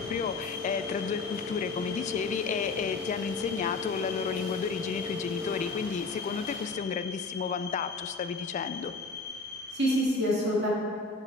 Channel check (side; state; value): right; quieter; 3.7 dB